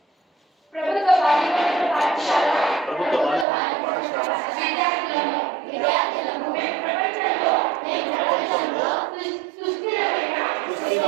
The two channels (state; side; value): drops out; left; at 3.5 s